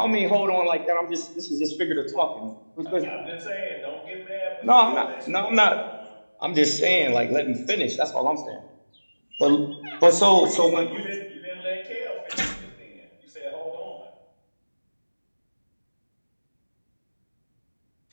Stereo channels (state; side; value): inverted; both; correlation -1.00